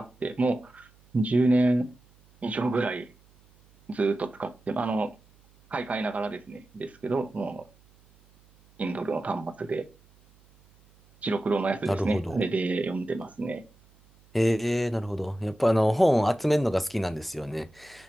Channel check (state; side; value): noise; right; hum, 30 dB below the sound